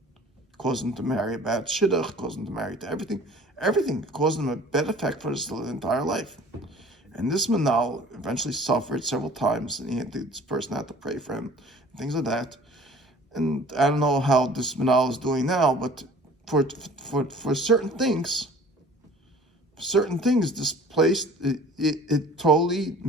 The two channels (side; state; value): both; normal; correlation 0.48